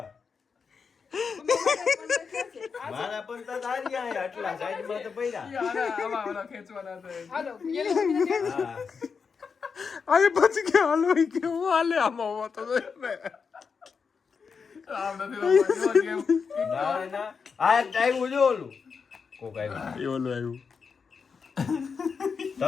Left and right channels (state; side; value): quieter; right; 5.7 dB